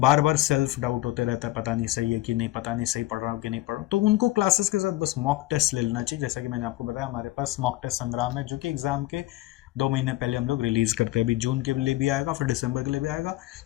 बार सेल्फ डाउट होते रहता है, पता नहीं सही है कि नहीं, पता नहीं सही पढ़ रहा हूँ कि नहीं पढ़ रहा हूँ, तो उनको क्लासेस के साथ बस मॉक टेस्ट ले लेना चाहिए। जैसा कि मैंने आपको बताया, हमारे पास मॉक टेस्ट संग्राम है, जो कि एग्जाम के 2 महीने पहले हम लोग रिलीज करते हैं। अभी जून के लिए भी आएगा, फिर दिसंबर के लिए भी आएगा।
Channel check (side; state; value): right; quieter; 17.3 dB